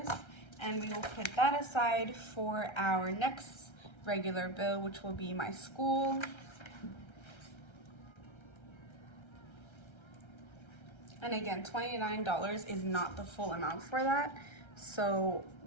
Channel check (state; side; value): late; right; 1.3 ms